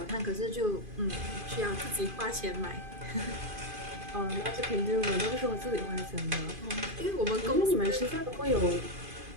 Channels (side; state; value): left; late; 2.5 ms